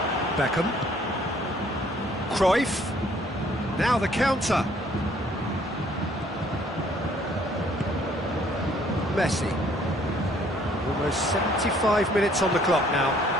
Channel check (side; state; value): both; normal; correlation 0.61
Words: Beckham. Cruyff. Now the counter. Messi. Almost 75 minutes on the clock now.